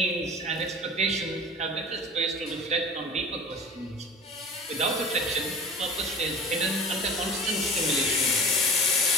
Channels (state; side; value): normal; both; correlation 0.37